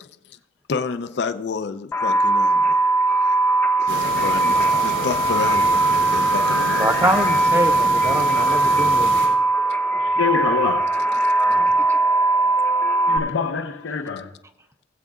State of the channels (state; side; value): normal; both; correlation 0.69